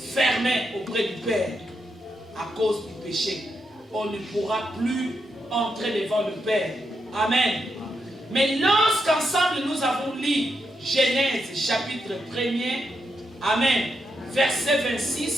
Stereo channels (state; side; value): normal; both; correlation 0.83